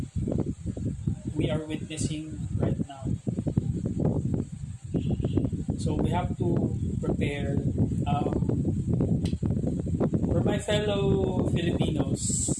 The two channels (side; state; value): both; identical; correlation 1.00